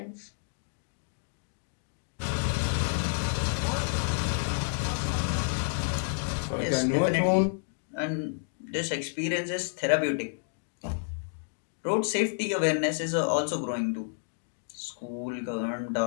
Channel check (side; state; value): right; silent; digital silence